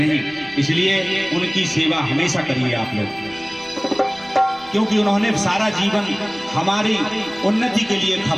इसलिए उनकी सेवा हमेशा करिए आप लोग, क्योंकि उन्होंने सारा जीवन हमारी उन्नति के लिए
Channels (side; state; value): right; noise; rumble, 28 dB below the sound